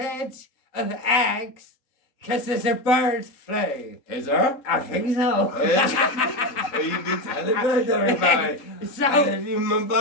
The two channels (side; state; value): right; late; 3.7 ms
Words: of eggs because there's a bird flu. Is there? I think so. Well, you be telling about everybody. So, And if you a